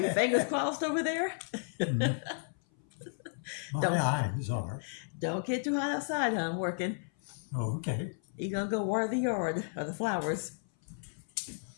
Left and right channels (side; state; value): right; silent; 56 dB below the other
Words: fingers crossed over there? My Don't eyes are. don't get too hot outside, huh? I'm working. Okay. You're going to go water the yard or the flowers.